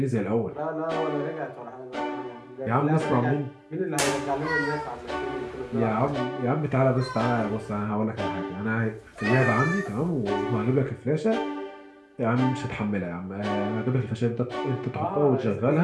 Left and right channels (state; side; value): identical; both; correlation 1.00